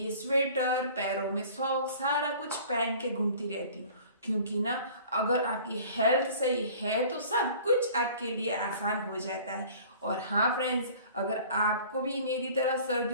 स्वेटर, पैरों में सॉक्स, सारा कुछ पहन के घूमती रहती हूँ, क्योंकि ना अगर आपकी हेल्थ सही है तो सब कुछ आपके लिए आसान हो जाता है। और हाँ फ्रेंड्स, अगर आपको भी मेरी तरह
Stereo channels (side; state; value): both; inverted; correlation -0.47